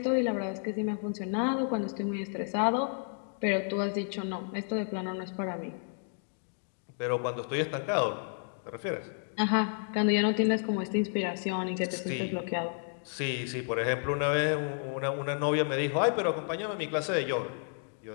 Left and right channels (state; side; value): silent; right; 57 dB below the other